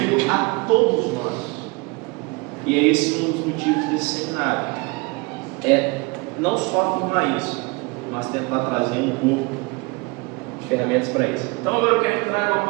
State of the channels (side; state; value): left; quieter; 27.4 dB